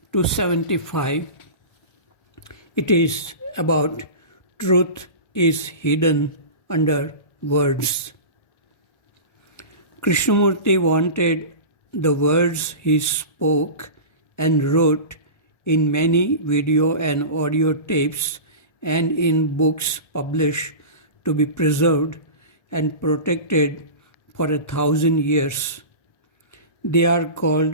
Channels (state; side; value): late; right; 1.4 ms